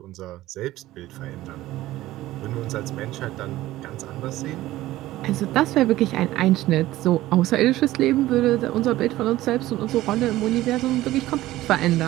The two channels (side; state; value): left; quieter; 16.0 dB